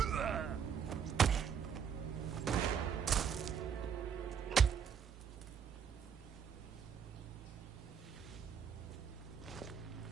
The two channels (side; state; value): left; quieter; 7.4 dB